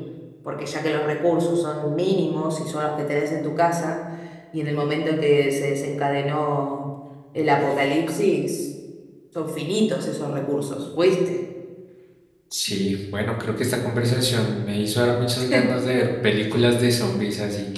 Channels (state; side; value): identical; both; correlation 1.00